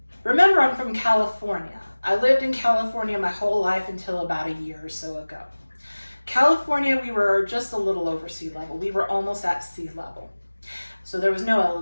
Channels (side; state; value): both; inverted; correlation -1.00